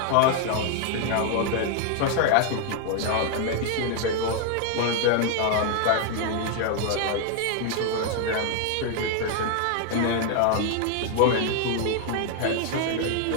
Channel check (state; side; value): different; both; correlation 0.00